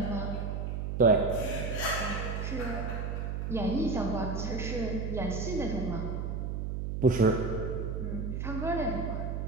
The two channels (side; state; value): right; noise; hum, 2 dB below the sound